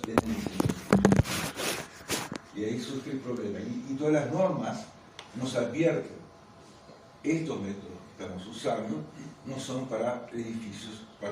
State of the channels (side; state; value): both; identical; correlation 1.00